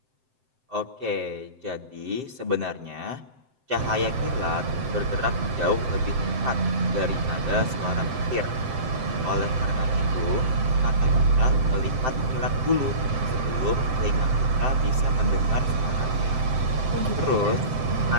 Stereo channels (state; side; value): late; left; 7.7 ms